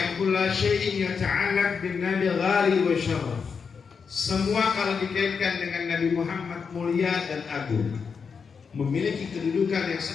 kula syai'in yata'allaq bin nabi ghali wa syaraf. Semua kalau dikaitkan dengan Nabi Muhammad mulia dan agung, memiliki kedudukan yang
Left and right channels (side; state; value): right; quieter; 5.8 dB